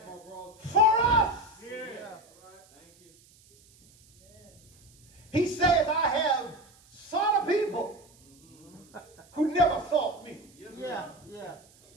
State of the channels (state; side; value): noise; right; hiss, 28 dB below the sound